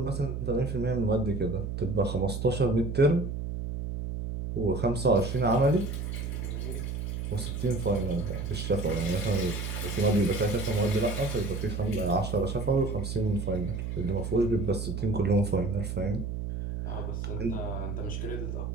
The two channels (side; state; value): right; noise; hum, 4 dB below the sound